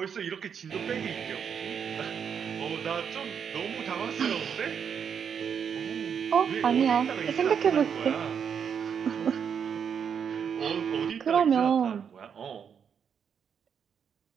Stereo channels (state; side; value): quieter; left; 7.4 dB